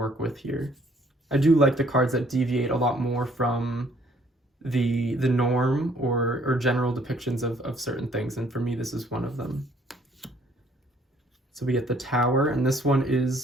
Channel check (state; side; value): normal; both; correlation 0.62